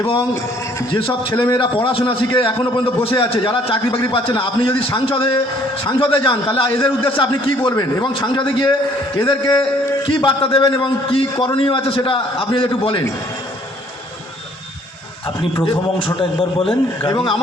এবং যেসব ছেলেমেয়েরা পড়াশোনা শিখে এখনও পর্যন্ত বসে আছে, যারা চাকরি বাকরি পাচ্ছে না, আপনি যদি সাংসদে যান তাহলে এদের উদ্দেশ্যে আপনি কি বলবেন, এবং সাংসদে গিয়ে এদেরকে কি বার্তা দেবেন এবং কি করণীয় আছে সেটা আপনি একটু বলেন। আপনি প্রথম অংশটা একবার বলেন। এবং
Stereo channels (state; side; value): normal; both; correlation 0.60